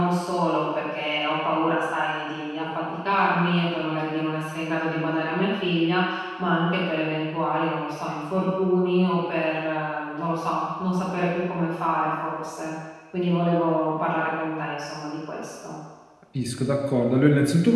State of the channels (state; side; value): identical; both; correlation 1.00